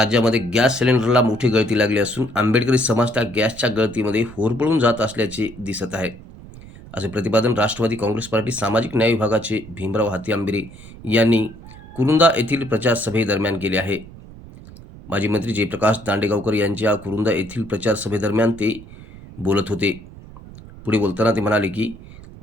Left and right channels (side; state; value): right; noise; rumble, 17 dB below the sound